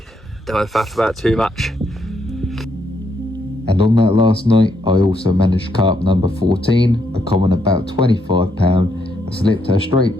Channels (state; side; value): normal; both; correlation 0.76